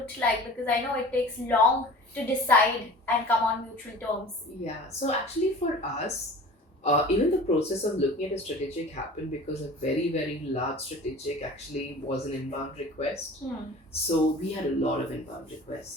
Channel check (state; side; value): normal; both; correlation 0.41